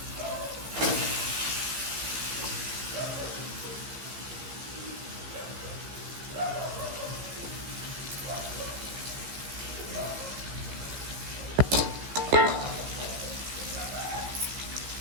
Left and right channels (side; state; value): left; late; 15 ms